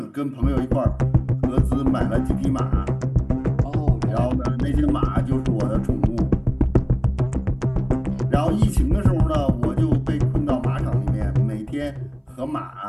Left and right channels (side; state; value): both; identical; correlation 1.00